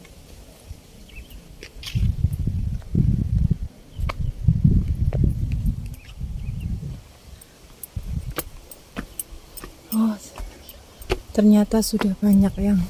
Oh ternyata sudah banyak yang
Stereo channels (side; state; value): both; identical; correlation 1.00